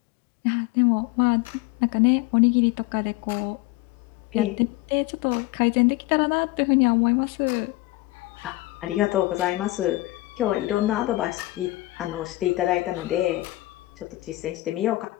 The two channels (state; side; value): quieter; right; 19.3 dB